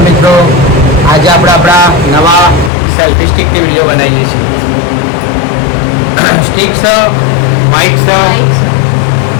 મિત્રો. આજે આપણે આપણા નવા સેલ્ફી સ્ટિકની વિડીયો બનાવીએ છીએ. સ્ટિક છે, માઇક છે.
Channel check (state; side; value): drops out; right; at 2.7 s